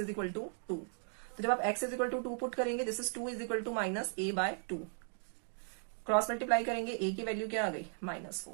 इक्वल टू 2। तो जब आप x is equal to 2 put करेंगे this is 2 is equal to minus a by 2, cross multiply करेंगे a की वैल्यू क्या आ गई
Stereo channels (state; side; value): silent; left; 53 dB below the other